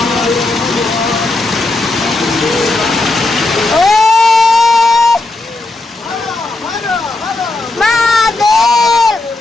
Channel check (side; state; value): right; quieter; 3.0 dB